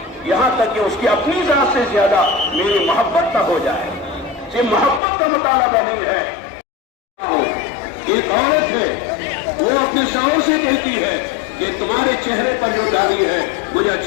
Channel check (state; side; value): drops out; right; at 5.0 s